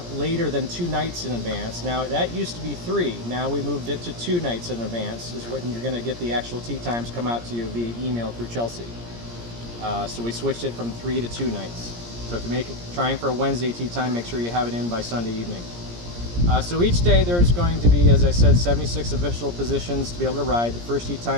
later than 2 nights in advance. Now that used to be 3, now we moved it to 2 nights in advance is when you're going to get the actual tee times come out to you via email through Chelsea. So we switched it from 3 to 2 nights. So if you're trying for a Wednesday tee time, make sure you have it in by Sunday evening. So each day there's going to be, as I said, 76 official positions to be able to ride. The first tee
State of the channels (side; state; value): left; late; 17 ms